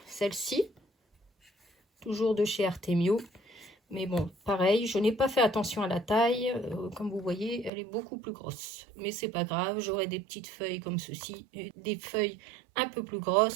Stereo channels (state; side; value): drops out; left; at 7.7 s